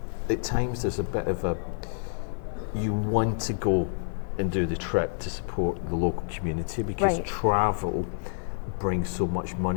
at times there's a bit of you want to go and do the trip to support the local community because travel brings so much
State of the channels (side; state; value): right; silent; 59 dB below the other